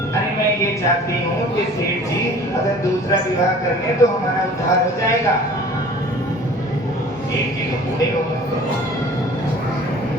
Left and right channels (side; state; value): both; normal; correlation 0.47